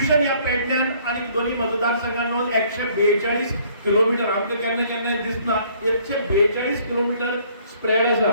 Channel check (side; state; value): both; inverted; correlation -0.61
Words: ह्या पेडण्यान आनी दोन्ही मतदारसंघात मेळून 142 किलोमीटर आमकां केन्ना केन्ना दिसना 142 किलोमीटर स्प्रेड आसा.